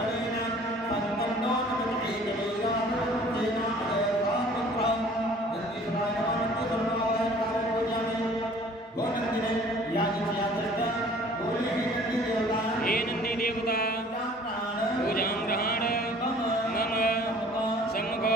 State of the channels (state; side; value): normal; both; correlation 0.51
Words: हे नंदी देवता पूजां ग्रहण मम सम्मुख